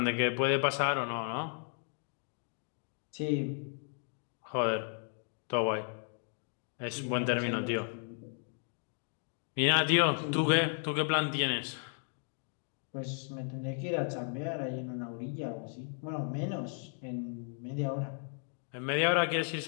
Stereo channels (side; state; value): right; silent; 55 dB below the other